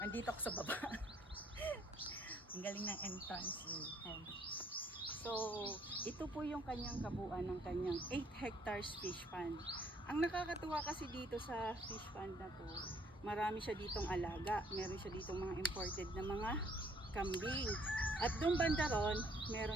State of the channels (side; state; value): both; normal; correlation 0.64